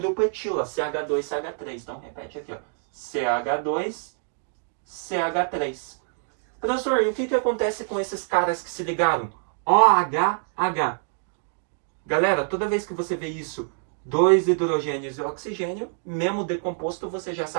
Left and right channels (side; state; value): left; silent; digital silence